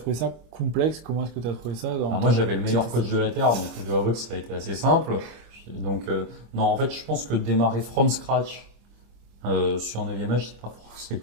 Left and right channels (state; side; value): late; left; 26 ms